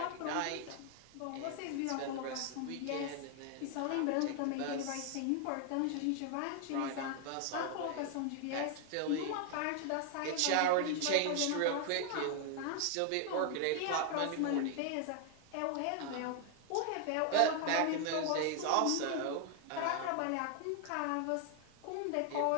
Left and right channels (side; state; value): both; different; correlation 0.00